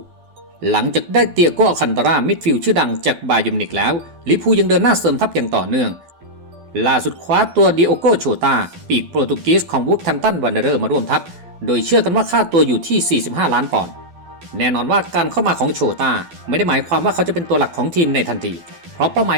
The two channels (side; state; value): left; late; 12 ms